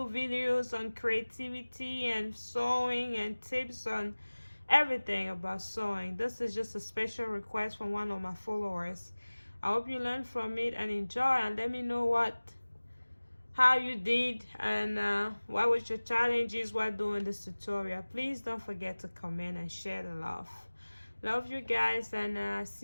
videos on creativity and sewing and tips on everything about sewing. This is just a special request from one of my followers. I hope you learn from it and enjoy, and let me know what how you did, and what was your challenges while doing this tutorial. Please don't forget to comment and share the love. Love you guys, and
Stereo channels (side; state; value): both; inverted; correlation -1.00